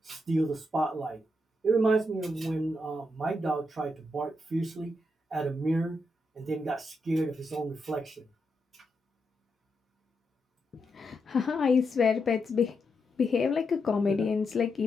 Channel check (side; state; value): both; normal; correlation 0.83